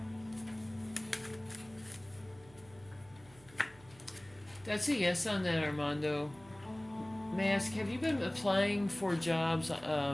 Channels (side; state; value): right; noise; hum, 24 dB below the sound